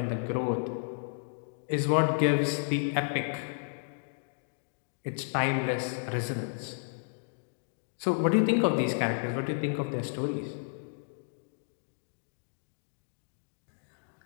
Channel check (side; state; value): right; silent; digital silence